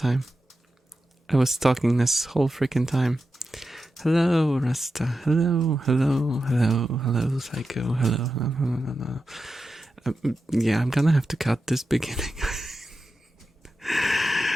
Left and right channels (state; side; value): normal; both; correlation 0.91